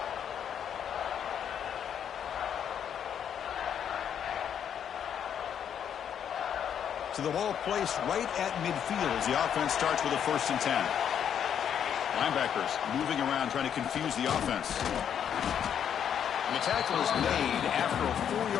So the ball placed right at midfield as the offense starts with a 1st and 10. Linebackers moving around trying to confuse the offense. And the tackle is made after a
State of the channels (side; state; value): right; quieter; 8.7 dB